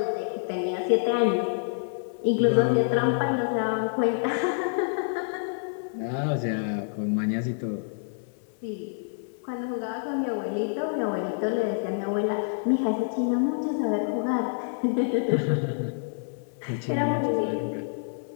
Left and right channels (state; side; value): silent; right; 60 dB below the other